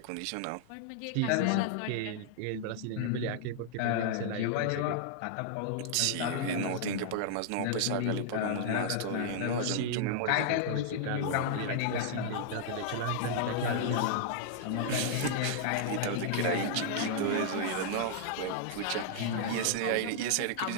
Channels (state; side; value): different; both; correlation -0.01